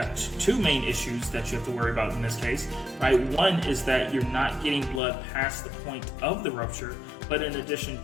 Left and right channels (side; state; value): right; drops out; at 5.0 s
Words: two main issues that you have to worry about in this case, right? One is that you're not getting blood past the point of the rupture, but in addition